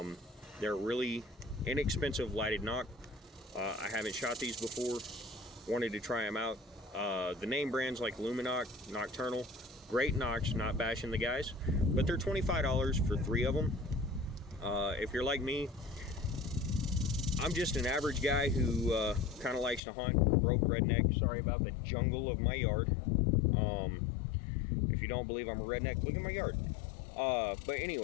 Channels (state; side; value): drops out; right; at 19.8 s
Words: They're really inexpensive lighted knock. I haven't shot these before. Wanted to try them out. The name brands like Luminoc, Nocturnal, great knocks, not bashing the guys, but they're $25 for 3 of them. If you're like me, I'm just an average guy who kind of likes to hunt, broke redneck. Sorry about the jungle of my yard. If you don't believe I'm a redneck, look at my yard. But